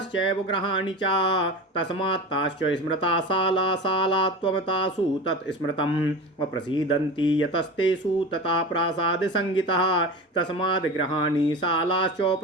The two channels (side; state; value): both; normal; correlation 0.30